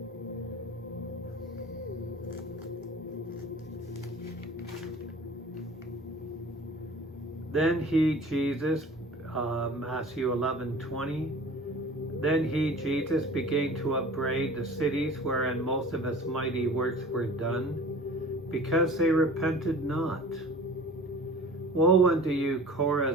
Then he, Jesus, Matthew 11:20. Then he, Jesus, began to upbraid the cities wherein most of his mighty works were done, because they repented not. Woe unto you,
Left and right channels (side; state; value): both; normal; correlation 0.42